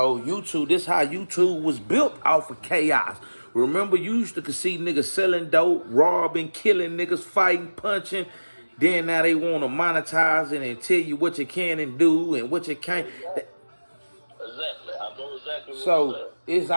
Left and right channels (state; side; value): inverted; both; correlation -1.00